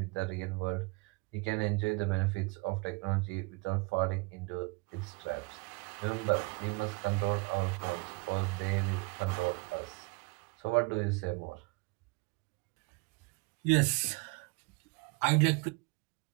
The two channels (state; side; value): quieter; left; 28.8 dB